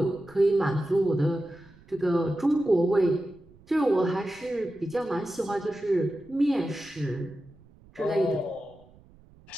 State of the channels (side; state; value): right; noise; rumble, 26 dB below the sound